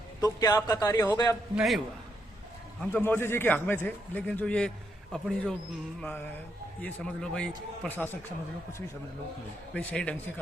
तो क्या आपका कार्य हो गया? नहीं हुआ। हम तो मोदी जी के हक में थे, लेकिन जो ये अपनी जो ये समझ लो भाई प्रशासक समझ लो, कुछ भी समझ लो, भाई सही ढंग से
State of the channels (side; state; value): both; normal; correlation 0.78